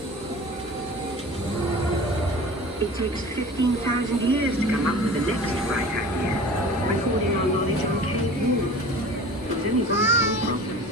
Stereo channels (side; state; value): both; normal; correlation 0.40